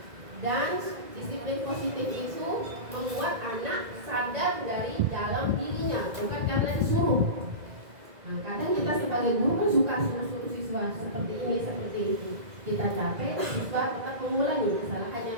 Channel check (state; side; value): late; left; 2.0 ms